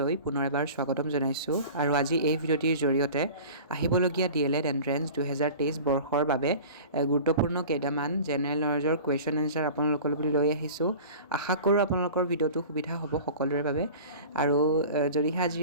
পুনৰ এবাৰ স্বাগতম জনাইছোঁ। আৰু আজি এই ভিডিঅ'টিৰ জৰিয়তে আহিবলগীয়া D.El.Ed এণ্ট্ৰেন্স 2023 বৰ্ষৰ বাবে গুৰুত্বপূৰ্ণ কেইটামান জেনেৰেল নলেজৰ কুৱেশ্যন এনচাৰ আপোনালোকলৈ লৈ আহিছোঁ। আশা কৰোঁ আপোনালোকৰ ভিডিঅ'টো সুবিধা হ'ব সকলোৰে বাবে। আৰু যদিহে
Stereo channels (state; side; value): inverted; both; correlation -0.39